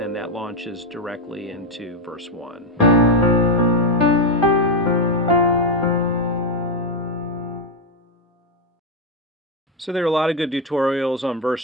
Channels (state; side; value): normal; both; correlation 0.06